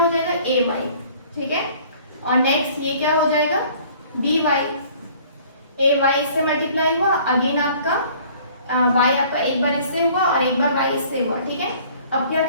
जाएगा ay, ठीक है, और नेक्स्ट ये क्या हो जाएगा by, ay इससे मल्टीप्लाई हुआ, अगेन आपका y आपका एक बार इससे हुआ और एक बार y इससे हुआ, ठीक है। अब क्या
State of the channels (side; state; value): both; inverted; correlation -0.53